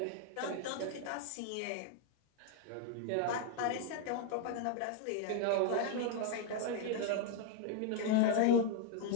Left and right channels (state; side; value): different; both; correlation 0.00